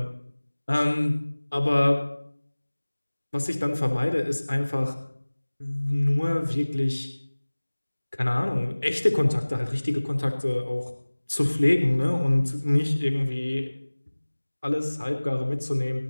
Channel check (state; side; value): inverted; both; correlation -1.00